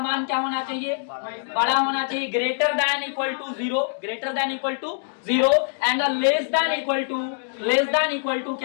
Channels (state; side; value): silent; right; digital silence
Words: क्या होना चाहिए, बड़ा होना चाहिए, greater than equal to 0 and less than equal to